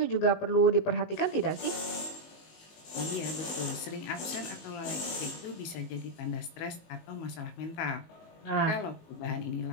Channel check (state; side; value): late; right; 19 ms